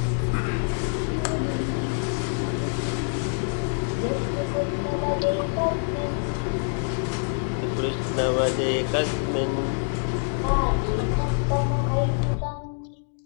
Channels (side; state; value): right; silent; 59 dB below the other